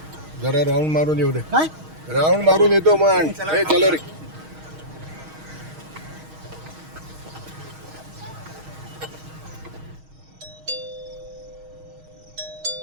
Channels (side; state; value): left; late; 6.4 ms